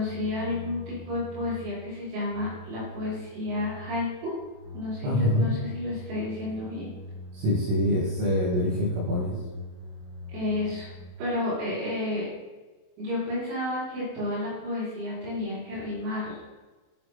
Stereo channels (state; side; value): late; left; 27 ms